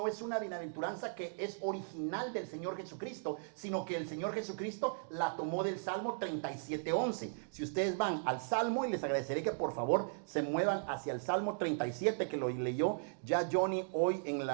es una bienaventuranza que es original del Señor Jesucristo, sino que el Señor Jesucristo la tomó del Salmo 37:11. Si ustedes van al Salmo, y les agradeceré que por favor se muevan hacia el Salmo 37, que lo leyó ya Johnny hoy en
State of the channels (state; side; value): silent; left; digital silence